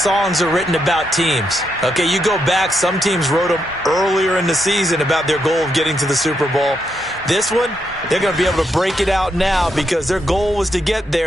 are written about teams. Okay, you go back, some teams wrote them earlier in the season about their goal of getting to the Super Bowl. This one, they're going to be able to break it out now because their goal was to get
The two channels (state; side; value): normal; both; correlation 0.80